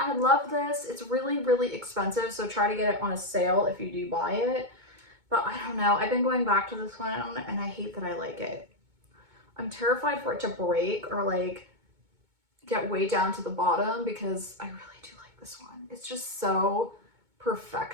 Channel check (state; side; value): late; left; 2.2 ms